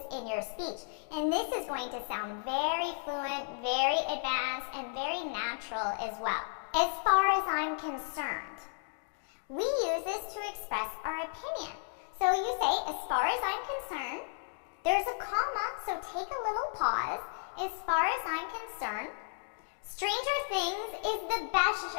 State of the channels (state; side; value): silent; right; digital silence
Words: in your speech. And this is going to sound very fluent, very advanced, and very natural as well. As far as I'm concerned, we use this to express our opinion. So you say, as far as I'm concerned, there's a comma, so take a little pause. As far as I'm concerned, Stranger Things is the best